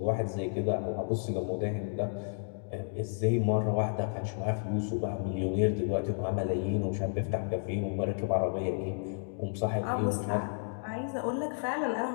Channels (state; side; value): silent; right; digital silence